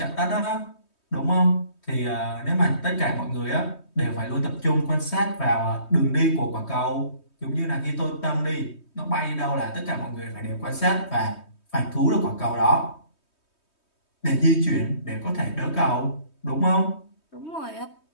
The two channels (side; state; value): right; late; 3.2 ms